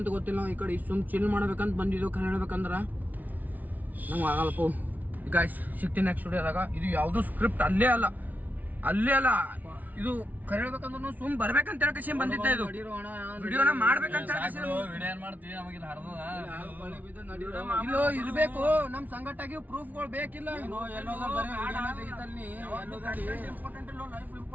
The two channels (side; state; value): left; late; 0.077 ms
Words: ಗೊತ್ತಿಲ್ಲ ನಾವು ಈ ಕಡೆ ಸುಮ್ ಚಿಲ್ ಮಾಡ್ಬೇಕಂತ ಬಂದಿದ್ದು ಖರೆ ಹೇಳ್ಬೇಕಂದ್ರ ನಂಗೆ ಆಗಲ್ಲಪ್ಪ ಗಾಯ್ಸ್ ಸಿಗ್ತೀನಿ ನೆಕ್ಸ್ಟ್ ವಿಡಿಯೋದಾಗ ಇದು ಯಾವ್ದು ಸ್ಕ್ರಿಪ್ಟ್ ಅಲ್ಲೇ ಅಲ್ಲ ಇದು ಖರೆ ಹೇಳ್ಬೇಕಂದ್ರೆ ಸುಮ್ ಬರ್ಬೇಕಂತ ಹೇಳಕೇಶಿ ಬಂದಿದ್ದೆ ಇದು ವಿಡಿಯೋನ ಮಾಡ್ಬೇಕಂತ ಇಲ್ಲೋ ಇರ್ಬೇಕು ನಮ್ ಸಂಘಟನೆಗೆ ಪ್ರೂಫ್ಗಳು ಬೇಕಿಲ್ಲ